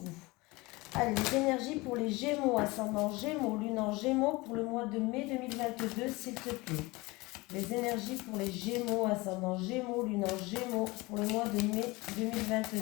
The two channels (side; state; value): right; quieter; 22.9 dB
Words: Allez, les énergies pour les Gémeaux, ascendant Gémeaux, lune en Gémeaux pour le mois de mai 2022, s'il te plaît. Les énergies pour les Gémeaux, ascendant Gémeaux, lune en Gémeaux pour le mois de mai